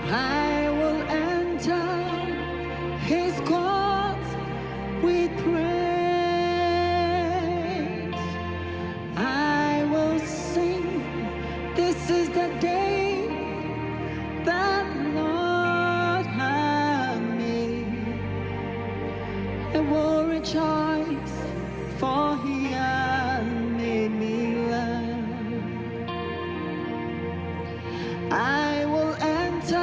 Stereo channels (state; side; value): identical; both; correlation 1.00